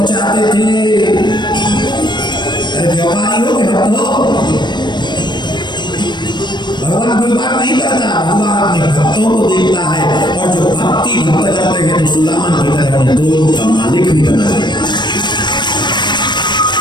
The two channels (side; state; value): right; late; 0.22 ms